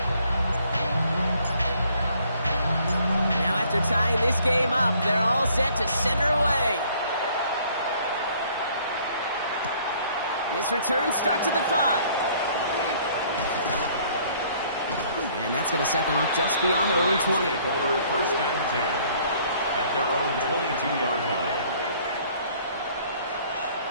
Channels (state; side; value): inverted; both; correlation -0.60